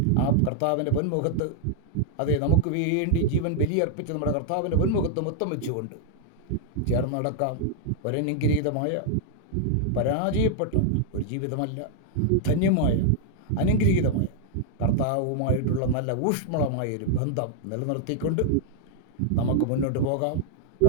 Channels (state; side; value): different; both; correlation 0.00